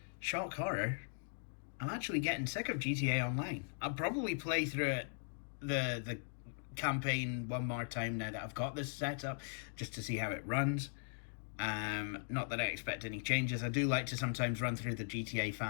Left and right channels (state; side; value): silent; right; digital silence